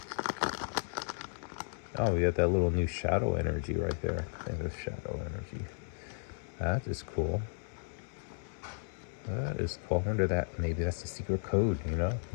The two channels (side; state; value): right; silent; digital silence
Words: Oh, we got that little new shadow energy right there. I think it's shadow energy. That is cool. That is cool. I wonder that maybe that's a secret code, you know?